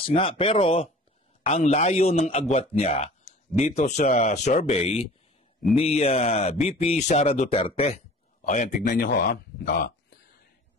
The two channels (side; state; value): both; normal; correlation 0.45